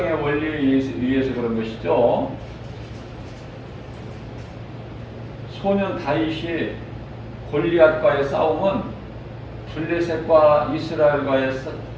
원리에 의해서 그런 것이죠. 소년 다윗이 골리앗과의 싸움은 블레셋과 이스라엘과의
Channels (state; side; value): identical; both; correlation 1.00